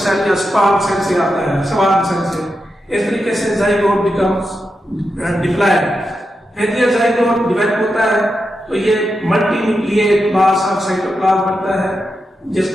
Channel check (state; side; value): normal; both; correlation 0.88